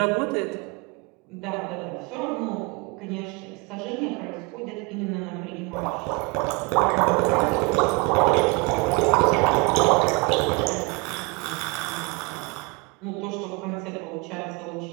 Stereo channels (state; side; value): quieter; left; 27.9 dB